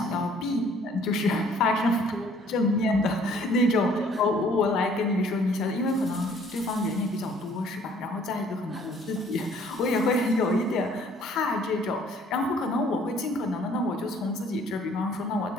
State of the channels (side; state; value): both; normal; correlation 0.58